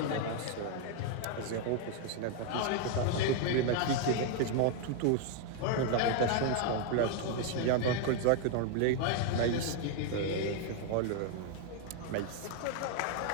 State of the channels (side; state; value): both; different; correlation 0.00